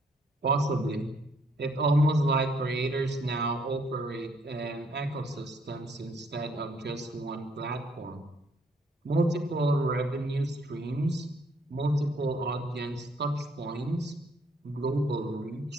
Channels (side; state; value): both; normal; correlation 0.67